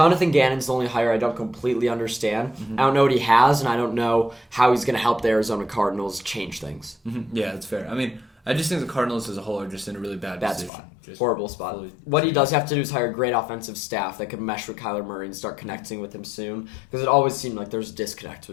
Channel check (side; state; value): right; drops out; at 10.7 s